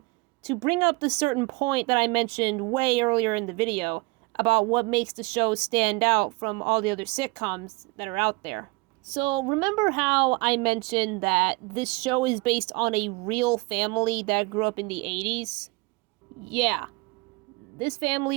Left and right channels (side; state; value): left; quieter; 25.6 dB